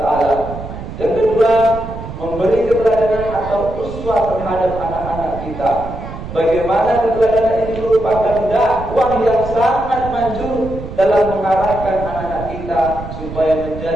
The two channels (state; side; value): noise; right; rumble, 10 dB below the sound